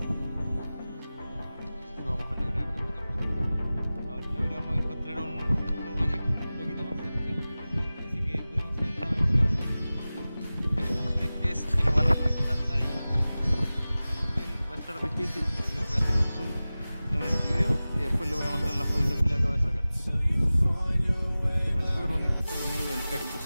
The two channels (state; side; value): inverted; both; correlation -0.97